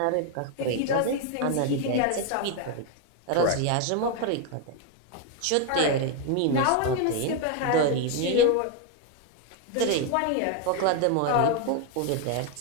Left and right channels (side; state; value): both; different; correlation 0.01